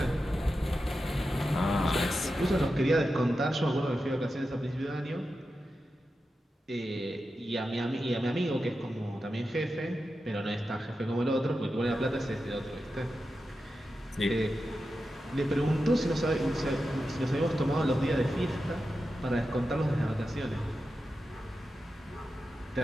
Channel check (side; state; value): both; normal; correlation 0.90